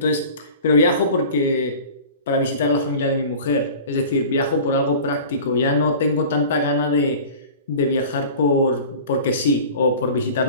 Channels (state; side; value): inverted; both; correlation -0.40